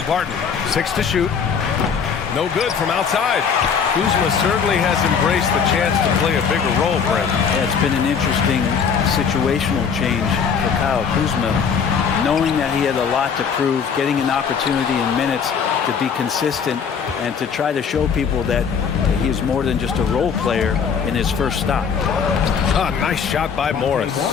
Barton. 6 to shoot. No good from outside. Kuzma certainly has embraced the chance to play a bigger role, Brent. Yeah, it's been an interesting situational change for Kyle Kuzma, knowing that he had a lot to prove, getting an opportunity in minutes to be consistent and to try to show people that he is more than just a role player in his first stop. Ah, nice shot by Morris.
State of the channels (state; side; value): quieter; right; 6.6 dB